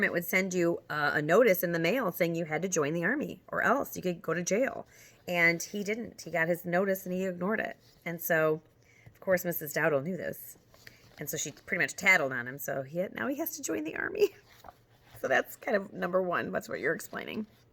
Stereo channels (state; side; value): identical; both; correlation 1.00